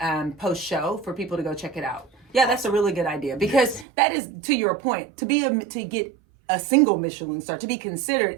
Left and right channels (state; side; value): drops out; left; at 3.9 s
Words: post show for people to go check it out. Yeah, that's a really good idea because that is, to your point, to get a single Michelin star, to be